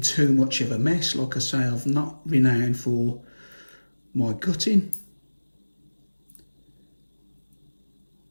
too much of a mess. Like I say, I've not renowned for my gutting.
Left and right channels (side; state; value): both; inverted; correlation -1.00